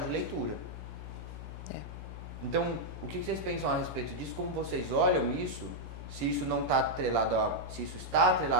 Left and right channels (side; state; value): left; noise; hum, 10 dB below the sound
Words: de leitura. Então, o que vocês pensam a respeito disso? Como vocês olham isso? Se isso não está atrelado se isso está